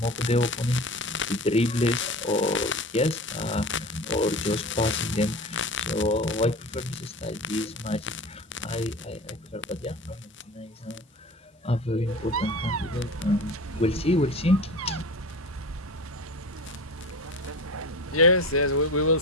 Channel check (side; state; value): both; normal; correlation 0.33